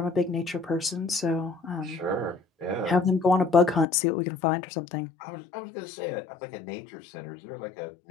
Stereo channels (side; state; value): right; drops out; at 3.9 s